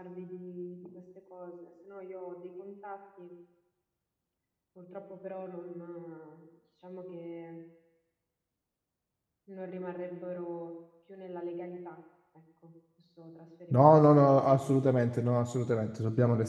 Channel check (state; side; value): identical; both; correlation 1.00